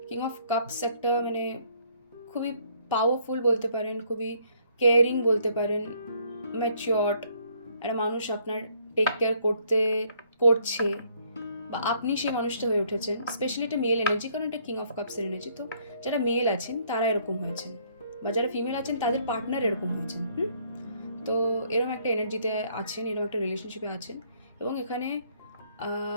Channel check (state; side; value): inverted; both; correlation -0.65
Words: কিং অফ কাপস একটা মানে খুবই পাওয়ারফুল বলতে পারেন, খুবই কেয়ারিং বলতে পারেন, ম্যাচিওর্ড একটা মানুষ আপনার টেক কেয়ার করছে, বা আপনি সেই মানুষটা হয়ে উঠেছেন। স্পেশালি এটা মেল এনার্জি, কারণ এটা কিং অফ কাপসের এনার্জি। তো যারা মেল আছেন তারা এরকম হয়েছেন, বা যারা ফিমেল আছেন তাদের পার্টনার এরকম হয়েছেন। তো এরকম একটা এনার্জিতে আছেন, এরকম একটা রিলেশনশিপে আছেন, এবং এখানে